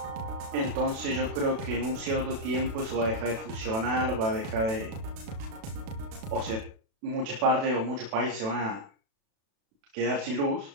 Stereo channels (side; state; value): left; late; 36 ms